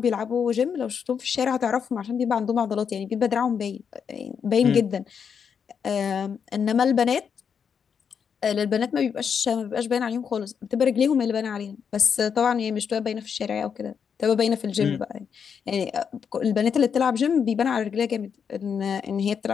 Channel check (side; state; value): right; quieter; 7.0 dB